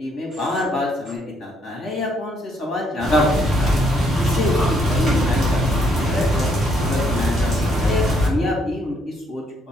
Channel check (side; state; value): both; normal; correlation 0.71